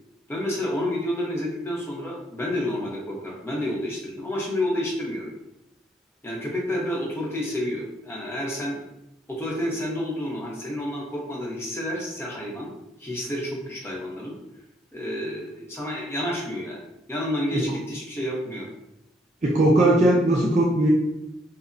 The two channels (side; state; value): both; normal; correlation 0.69